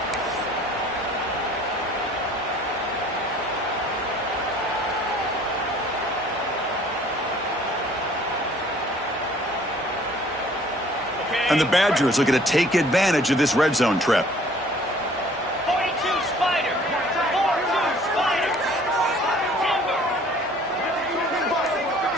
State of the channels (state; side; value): normal; both; correlation 0.54